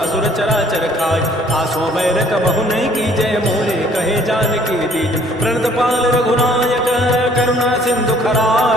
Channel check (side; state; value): both; normal; correlation 0.59